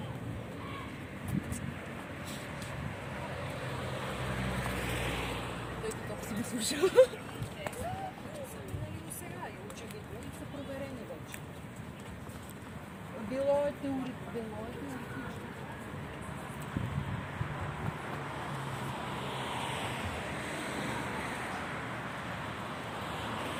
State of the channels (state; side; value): identical; both; correlation 1.00